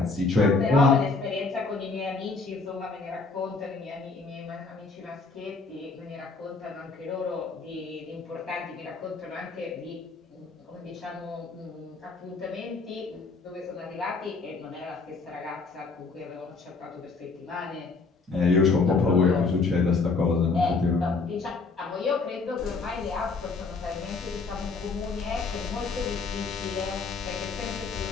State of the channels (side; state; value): right; quieter; 4.1 dB